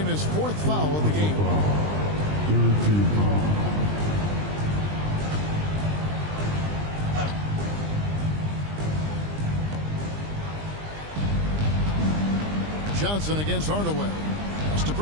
his fourth foul of the game. Johnson against Hardaway. Pass to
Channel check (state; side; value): late; left; 20 ms